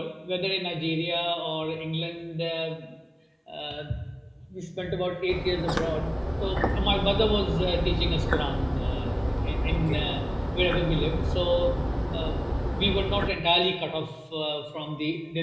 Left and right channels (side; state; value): both; identical; correlation 1.00